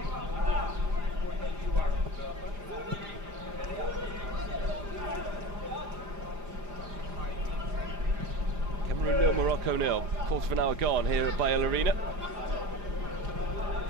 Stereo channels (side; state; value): left; late; 4.9 ms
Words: Well, quarter of an hour gone here at Baku Arena.